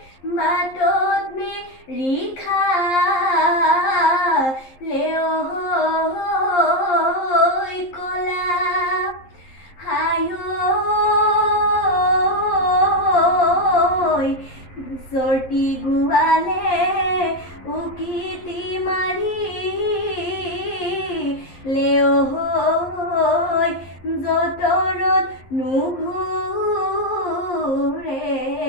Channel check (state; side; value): late; right; 11 ms